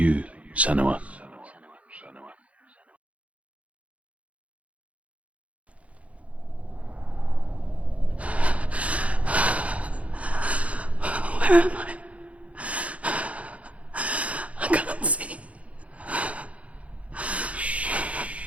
Senua. Where am I? I can't see.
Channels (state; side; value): late; left; 0.065 ms